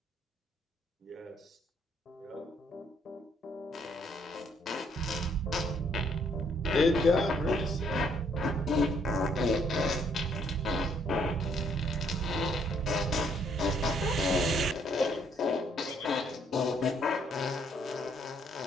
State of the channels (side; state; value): both; normal; correlation 0.68